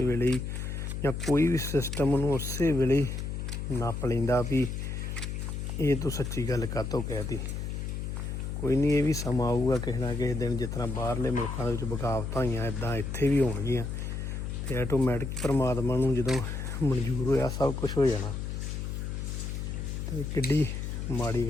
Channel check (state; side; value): noise; left; hum, 4 dB below the sound